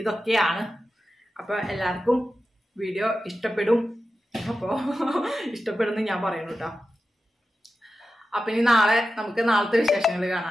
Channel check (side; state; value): both; normal; correlation 0.92